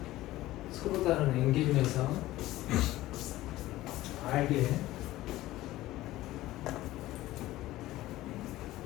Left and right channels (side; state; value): right; quieter; 16.4 dB